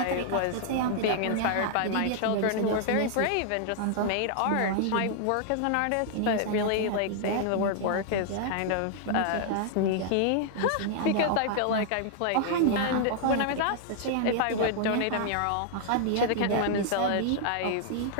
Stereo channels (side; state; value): both; different; correlation -0.01